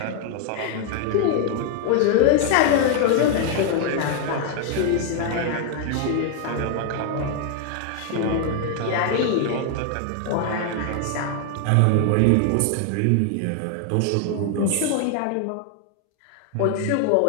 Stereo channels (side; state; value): both; different; correlation 0.00